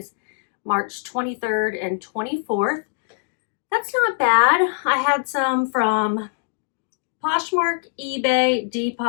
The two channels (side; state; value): right; silent; 64 dB below the other